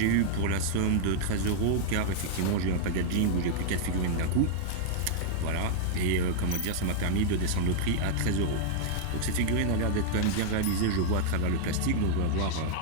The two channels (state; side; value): different; both; correlation -0.01